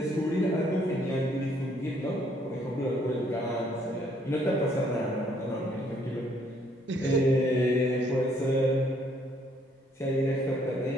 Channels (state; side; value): normal; both; correlation 0.66